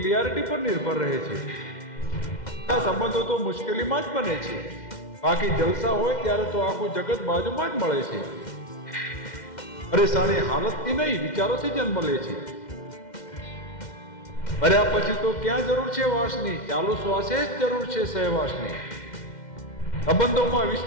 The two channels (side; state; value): right; late; 2.1 ms